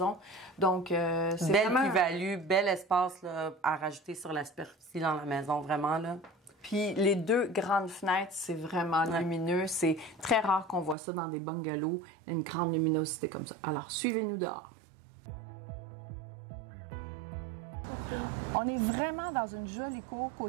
Donc, c'est belle vraiment... plus-value, bel espace là, à rajouter sur la superficie dans la maison, vraiment là. Puis les 2 grandes fenêtres, c'est vraiment lumineux. C'est très rare qu'on voit ça dans des bungalows, une grande luminosité comme ça. Alors, suivez-nous dehors. On est vraiment dans une jolie cour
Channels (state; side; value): drops out; left; at 11.0 s